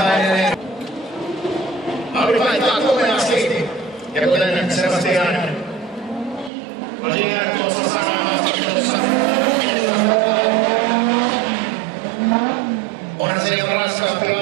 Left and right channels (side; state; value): left; drops out; at 6.5 s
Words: edelleen. Audi vaihtaa komeasti. Ja kuten Sebastian Lagier tuossa sanoi haastattelussa. Onhan se ihan raskaampi